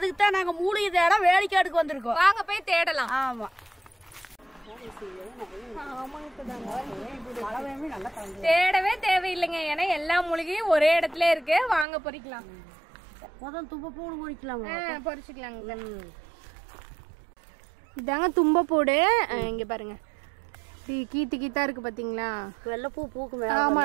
தான் நாங்க மூலிகை தேட வேலைக்காடுக்கு வந்திருக்கோம். வாங்க போய் தேடலாம். ஆமா, தேடவே தேவையில்லைங்க, ஏன்னா எல்லா மூலிகையும் ஒரே இடத்துல இருக்கு. வாங்க பொறிக்கலாம். முதல் தும்பப்பூடு பொறிக்கலாம். பொறிச்சுக்கலாங்க. இதாங்க தும்பப்பூடு. இங்க பாருங்க, கீத்து கீத்தா இருக்கு பாத்தீங்களா? வெள்ளைப்பூ பூக்கு. ஆமா,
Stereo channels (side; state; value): left; drops out; at 11.9 s